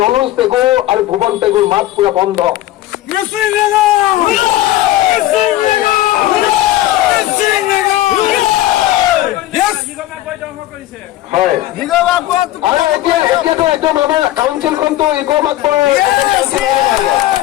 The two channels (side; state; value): right; quieter; 14.9 dB